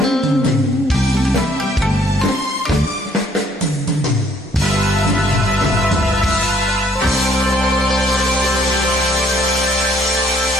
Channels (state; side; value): normal; both; correlation 0.64